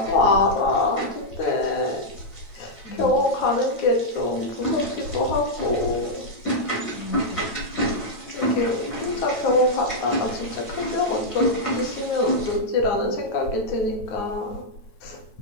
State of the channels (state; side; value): late; right; 9.1 ms